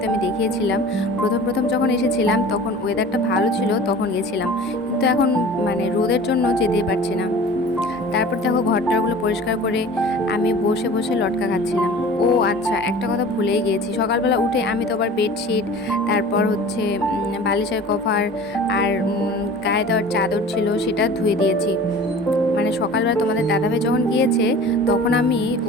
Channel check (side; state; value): both; normal; correlation 0.41